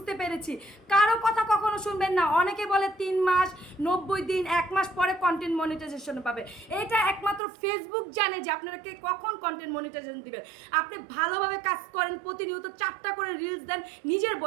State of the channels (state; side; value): drops out; left; at 7.4 s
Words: পেরেছি। কারো কথা কখনো শুনবেন না। অনেকে বলে 3 মাস, 90 দিন, 1 মাস পরে কন্টেন্ট মনিটাইজেশন পাবে। এটা একমাত্র ফেসবুক জানে যে আপনাকে কখন কন্টেন্ট মনিটাইজেশন দিবেন। আপনি ভালোভাবে কাজ করেন, প্রতিনিয়ত 4টা করে রিলস দেন নিজের